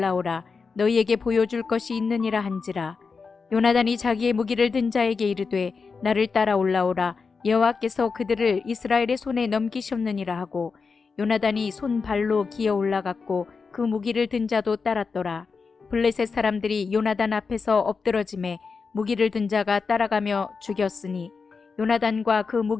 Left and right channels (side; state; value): right; quieter; 4.9 dB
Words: 너희에게 보여줄 것이 있느니라 한지라. 요나단이 자기의 무기를 든 자에게 이르되 나를 따라 올라오라 여호와께서 그들을 이스라엘의 손에 넘기셨느니라 하고 요나단이 손발로 기어 올라갔고 그 무기를 든 자도 따랐더라. 블레셋 사람들이 요나단 앞에서 엎드러짐에 무기를 든 자가 따라가며 죽였으니 요나단과 그